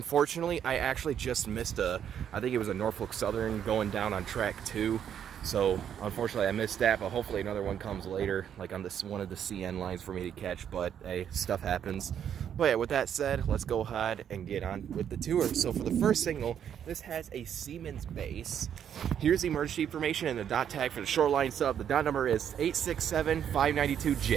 I actually just missed I think it was a Norfolk Southern going down on track 2. So unfortunately I missed that, but hopefully another one comes later, like on this one of the CN lines for me to catch. But hey, stuff happens. But yeah, with that said, let's go ahead and get on with the tour. So for the first signal, this has a Siemens base. Here's the emergency information and the dot tag for the Shoreline sub. The dot number is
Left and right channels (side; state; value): left; quieter; 9.0 dB